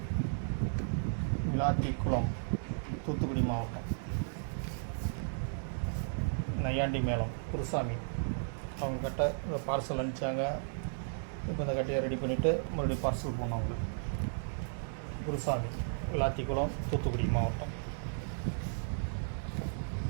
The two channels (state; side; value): silent; left; digital silence